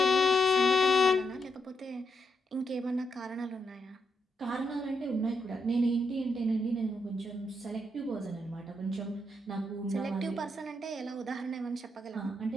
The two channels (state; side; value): normal; both; correlation 0.81